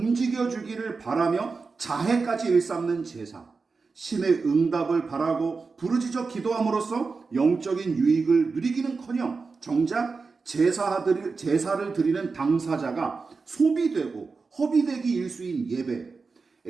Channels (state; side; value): quieter; left; 4.5 dB